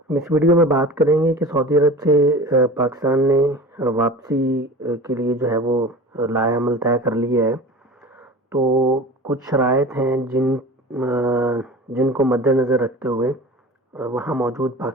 اس ویڈیو میں بات کریں گے کہ سعودی عرب سے پاکستان نے واپسی کے لیے جو ہے وہ لائحہ عمل طے کر لیا ہے، تو کچھ شرائط ہیں جن کو مد نظر رکھتے ہوئے وہاں موجود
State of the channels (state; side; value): normal; both; correlation 0.36